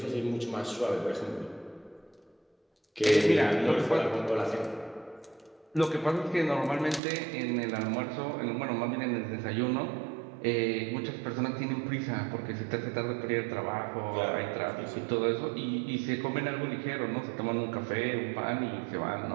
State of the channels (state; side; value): drops out; left; at 7.0 s